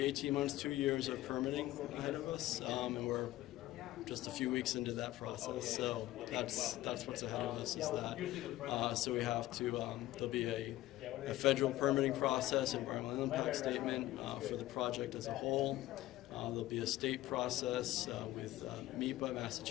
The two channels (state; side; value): quieter; right; 16.0 dB